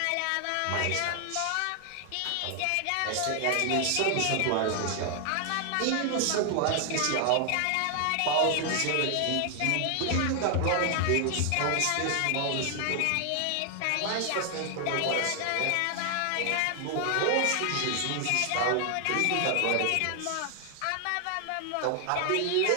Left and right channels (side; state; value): both; different; correlation 0.00